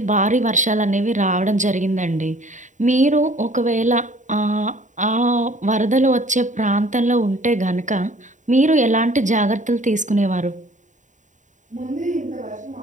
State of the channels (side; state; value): left; late; 0.36 ms